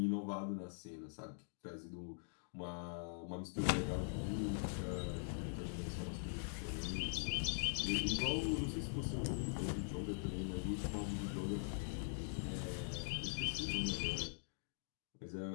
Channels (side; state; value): right; silent; digital silence